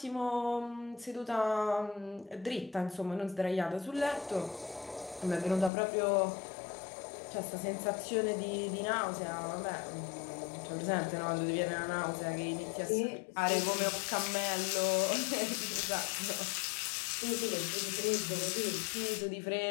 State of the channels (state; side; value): drops out; right; at 5.7 s